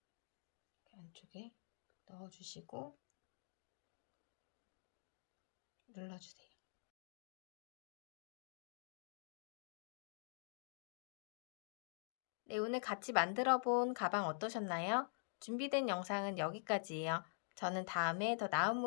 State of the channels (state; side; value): silent; right; digital silence